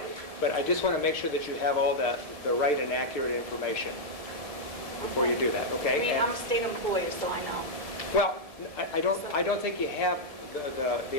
But I just want to make sure that you have all the right and accurate information before you do that, okay? I mean, And- I'm a state employee, so I know. Well, I don't think you have the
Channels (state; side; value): late; left; 1.7 ms